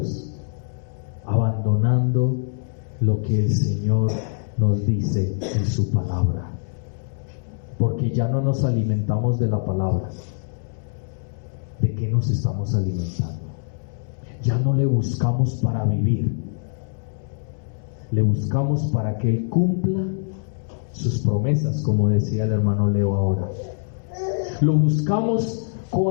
Abandonando lo que el Señor nos dice en su palabra. Porque ya no nos alimentamos de la palabra. ¿De qué nos estamos alimentando? Ya no le buscamos para vivir. Le buscamos para que Él cumpla sus promesas, como decía el hermano Leo ahora. Lo buscamos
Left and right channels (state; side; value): silent; right; 63 dB below the other